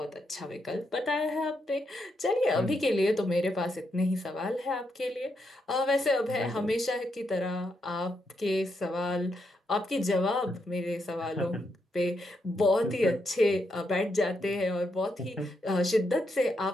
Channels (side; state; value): both; normal; correlation 0.81